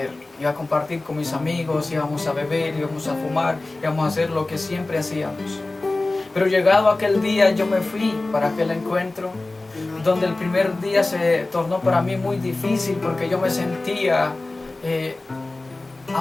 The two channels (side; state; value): right; quieter; 3.0 dB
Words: iba a compartir con mis amigos, íbamos a beber, íbamos a fumar, íbamos a hacer lo que siempre hacíamos. Pero llegado aquel día yo me fui para aquel encuentro, donde el primer día se tornó para mí muy difícil porque yo me sentía